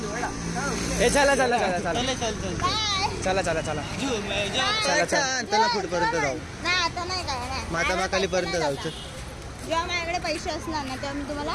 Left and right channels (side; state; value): both; identical; correlation 1.00